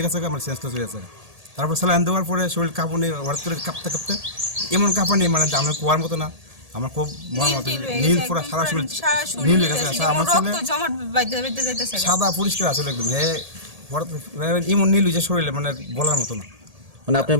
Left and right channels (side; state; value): left; late; 1.8 ms